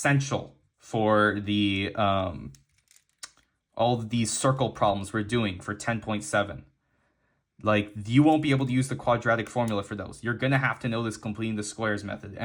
for the all of these circle problems we're doing for 10.7. Like, you won't be able to use the quadratic formula for those. You're going to have to know this completing the squares method.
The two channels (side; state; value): both; identical; correlation 1.00